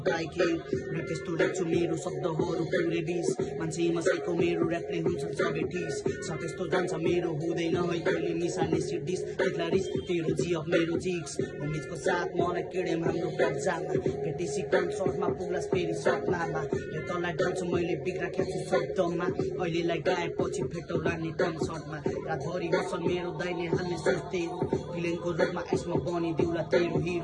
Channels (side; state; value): both; identical; correlation 1.00